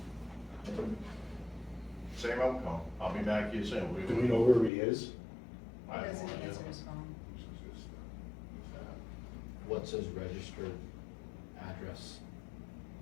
same outcome. I'll be back here soon. Do we know where he is? I He have doesn't no idea. answer his phone. What's his registered address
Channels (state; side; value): drops out; right; at 4.7 s